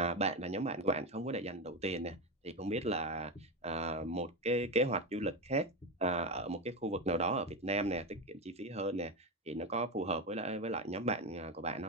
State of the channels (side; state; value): both; normal; correlation 0.16